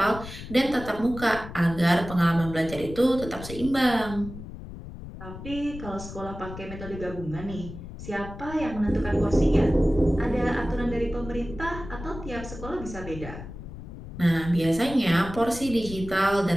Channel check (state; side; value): noise; left; rumble, 12 dB below the sound